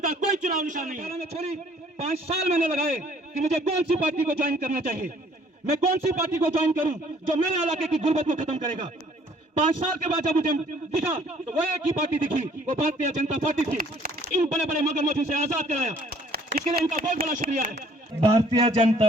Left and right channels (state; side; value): normal; both; correlation 0.58